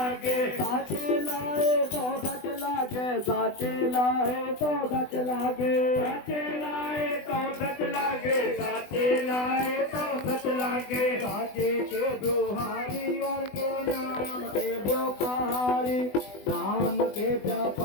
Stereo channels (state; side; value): late; right; 20 ms